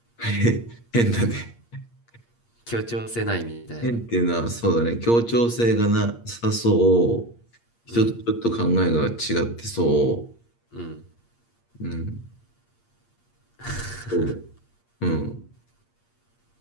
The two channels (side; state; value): right; late; 8.6 ms